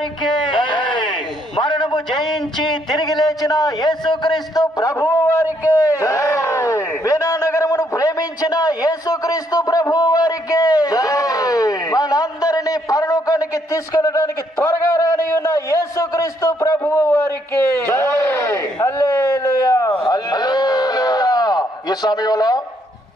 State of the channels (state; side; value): normal; both; correlation 0.72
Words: జై। మరణము జయించి తిరిగి లేచిన యేసుక్రీస్తు ప్రభువు వారికి జై। వీణా నగరమును ప్రేమించిన యేసుక్రీస్తు ప్రభువు వారికి జై। మనందరినీ పరలోకానికి తీసుకెళ్ళడానికి త్వరగా రాని ఉన్న యేసుక్రీస్తు ప్రభువు వారికి జై। హల్లెలూయా హల్లెలూయా। ఈ సమయంలో